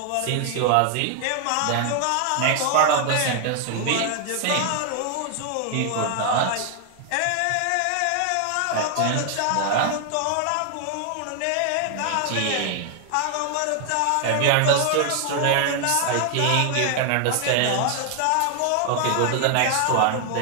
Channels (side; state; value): both; different; correlation 0.00